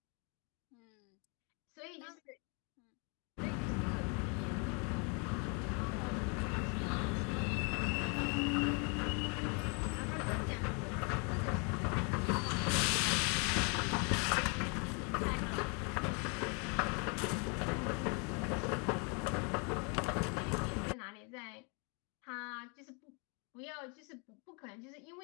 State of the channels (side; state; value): right; quieter; 34.8 dB